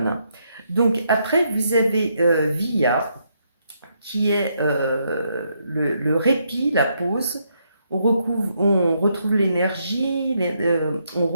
Donc après vous avez Via qui est le répit, la pause. On retrouve l'énergie, on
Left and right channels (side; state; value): both; inverted; correlation -0.77